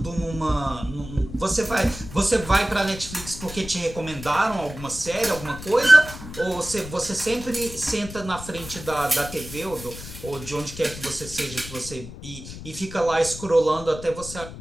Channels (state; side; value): noise; left; rumble, 12 dB below the sound